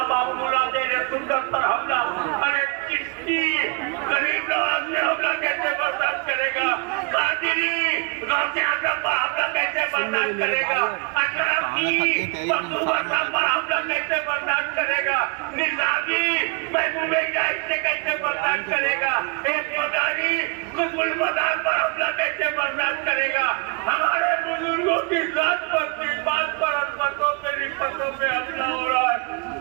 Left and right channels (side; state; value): left; quieter; 32.4 dB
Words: बाबूला देने सुंदर पर हमला। अरे किसकी गरीब नवाज ने हमला कैसे बर्दाश्त करेगा? कादिरी गौसे आजम पर हमला कैसे बर्दाश्त करेगा? अशरफ की मखदूम साहब पर हमला कैसे बर्दाश्त करेगा? निजामी महबूबे इलाही से कैसे बर्दाश्त करेगा? एक मदारी कुतुल मदार पर हमला कैसे बर्दाश्त करेगा? हमारे बुजुर्गों की जात पर, बात पर, अजमतों पे, निस्बतों पे हमला हो रहा है।